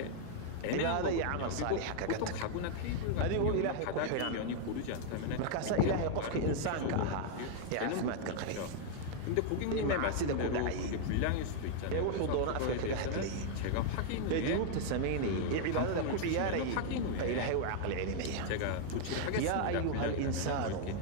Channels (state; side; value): different; both; correlation 0.00